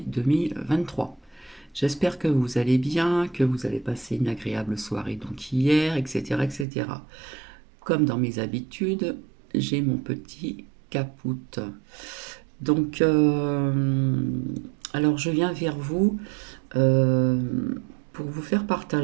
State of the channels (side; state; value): left; drops out; at 6.7 s